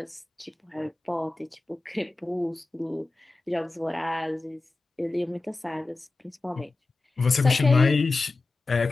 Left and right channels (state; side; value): quieter; right; 3.4 dB